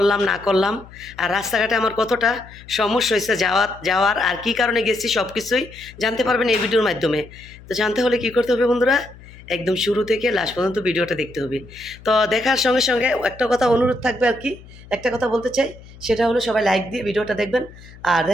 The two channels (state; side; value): noise; left; hum, 20 dB below the sound